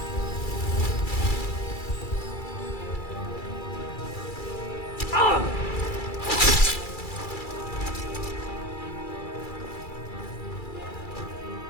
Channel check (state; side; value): late; right; 2.3 ms